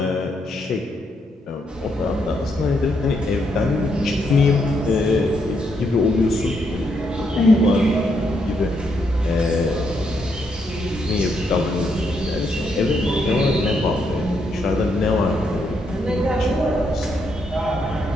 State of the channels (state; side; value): normal; both; correlation 0.77